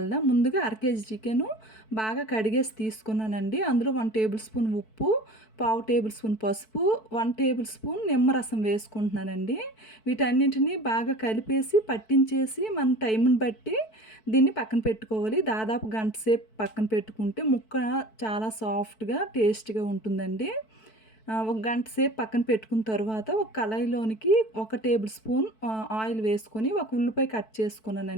ముందుగా అర కేజీ చికెను బాగా కడిగేసి తీసుకున్నానండి. అందులో 1 టేబుల్ స్పూన్ ఉప్పు, పావు టేబుల్ స్పూన్ పసుపు, 1 టేబుల్ స్పూన్ నిమ్మరసం వేసుకుంటున్నానండి. వీటన్నింటిని బాగా కలిపేసి పట్టించేసి మన టైంని బట్టి దీన్ని పక్కన పెట్టుకోవాలి. దాదాపు గంట సేపు పక్కన పెట్టుకుంటే ముక్క చాలా సాఫ్ట్‌గా, టేస్ట్‌గా ఉంటుందండి. ఒక గంట సేపు పక్కన పెట్టుకున్న తరువాత ఒక కళాయిలోనికి ఒక టేబుల్ స్పూన్ ఆయిల్ వేసుకొని ఒక ఉల్లిపాయ కట్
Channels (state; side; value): late; right; 4.6 ms